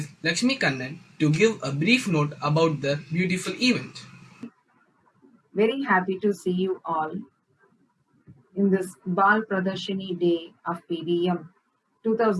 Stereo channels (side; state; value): both; identical; correlation 1.00